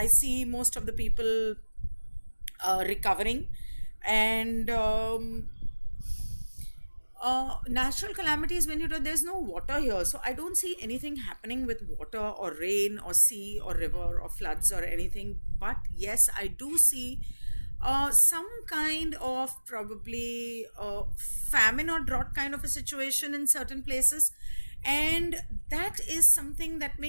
see most of the people recovering, and natural calamities, when there's no water here, so I don't see anything happening with water or rain or sea or river or floods or anything. But yes, I do see some kind of probably famine or drought kind of a situation in certain places, and that is something that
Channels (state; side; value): inverted; both; correlation -1.00